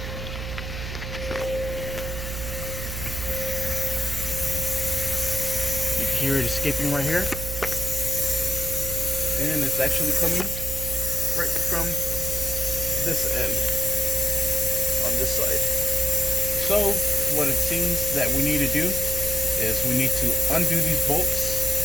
You can hear it escaping right here. And it's actually coming right from this end, on this side. So what it seems that we need to do is we need to undo these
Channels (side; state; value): right; noise; hum, 6 dB below the sound